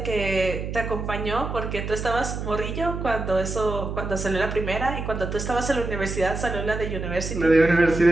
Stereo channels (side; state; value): right; noise; hum, 5 dB below the sound